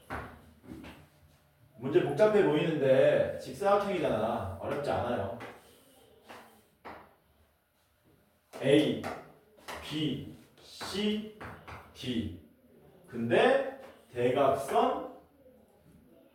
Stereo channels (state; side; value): identical; both; correlation 1.00